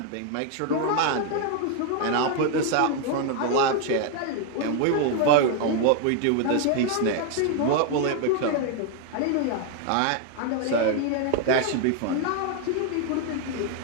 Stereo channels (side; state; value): both; different; correlation 0.00